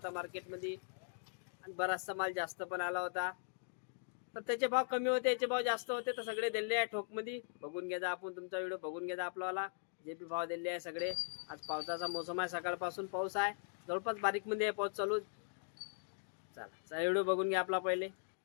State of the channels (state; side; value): silent; right; digital silence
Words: मार्केटमध्ये आणि बराचसा माल जास्त पण आला होता. तर त्याचे भाव कमी होते, याचे भाव जास्त होते, तर सगळे दिले आहे ठोकमध्ये. बघून घ्या आपण, तुमचा व्हिडिओ बघून घ्या आपल्याला. जे बी भाव दिले आहे सगळे. आज पावसाचा मोसम आहे, सकाळपासून पाऊस आहे, जवळपास बारीकमध्ये आहे पाऊस चालू. चला व्हिडिओ बघून घ्या आपला पहिले.